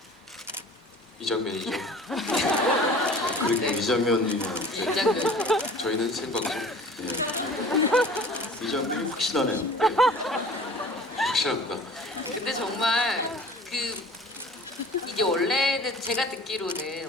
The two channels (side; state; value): both; normal; correlation 0.45